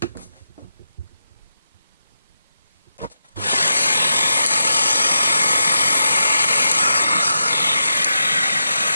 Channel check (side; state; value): both; inverted; correlation -0.87